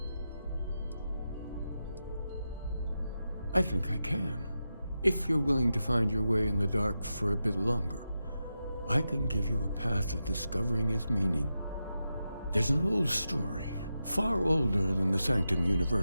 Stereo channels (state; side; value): inverted; both; correlation -0.89